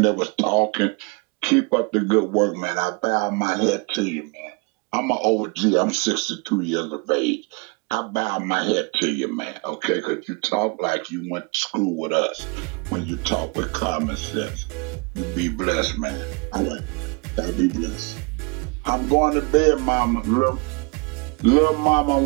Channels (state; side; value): quieter; left; 30.9 dB